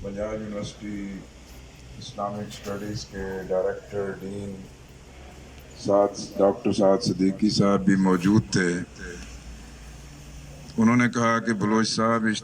پنجاب یونیورسٹی اسلامک اسٹڈیز کے ڈائریکٹر ڈین ڈاکٹر سعد صدیقی صاحب بھی موجود تھے۔ انہوں نے کہا کہ بلوچ صاحب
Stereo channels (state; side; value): identical; both; correlation 1.00